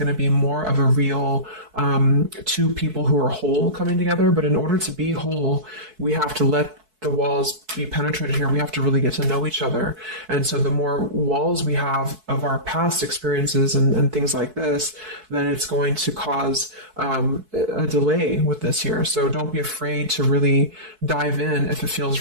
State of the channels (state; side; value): late; left; 4.6 ms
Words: to be more of a real two people who are whole coming together. But in order to be whole, we have to let the walls be penetrated here. We have to really get to know each other. And so the more walls we have of our past experiences and things like this, then it's going to cause a delay with this here. So don't be afraid to really dive in if it